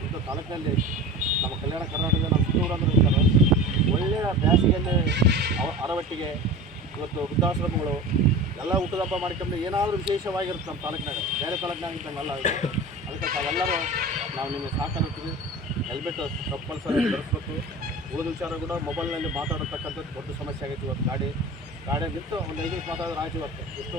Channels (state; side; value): normal; both; correlation 0.33